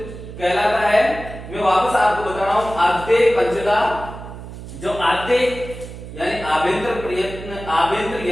कहलाता है। मैं वापस आपको बता रहा हूं, आद्य पंचदा, जो आद्य यानी आभ्यंतर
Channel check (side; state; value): right; noise; hum, 12 dB below the sound